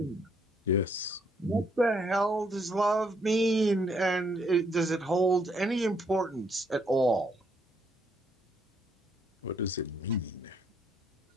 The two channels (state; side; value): normal; both; correlation 0.71